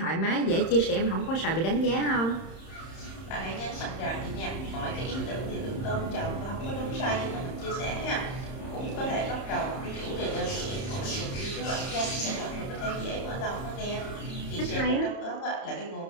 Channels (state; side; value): late; right; 30 ms